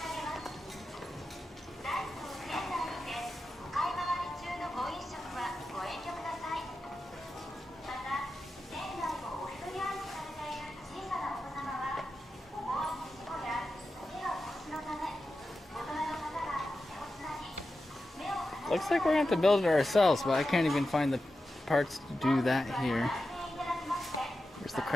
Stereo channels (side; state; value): both; normal; correlation 0.91